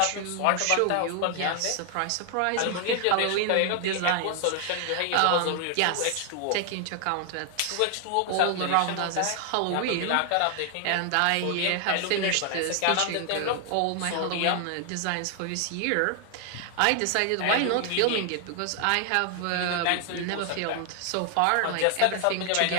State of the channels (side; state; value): both; different; correlation 0.00